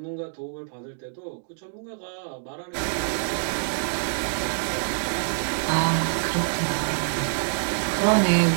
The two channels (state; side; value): silent; left; digital silence